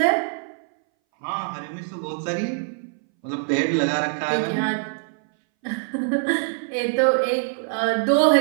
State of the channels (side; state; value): left; silent; 61 dB below the other